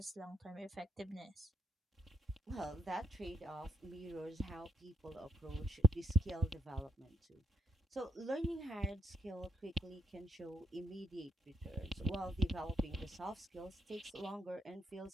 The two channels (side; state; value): both; normal; correlation 0.72